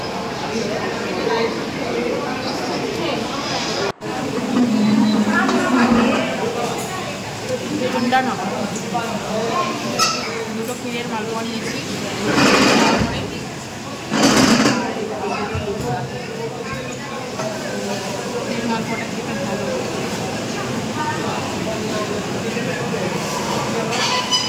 ঠান্ডা না, দুটো ক্ষীরের মালপোয়া নিয়েছি। ক্ষীরের মালপোয়াটা খেতে ভালো।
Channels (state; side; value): identical; both; correlation 1.00